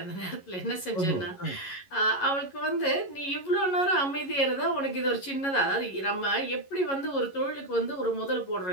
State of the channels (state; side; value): late; right; 11 ms